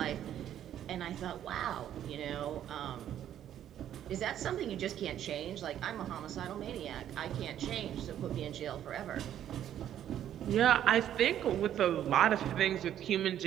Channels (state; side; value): quieter; left; 10.8 dB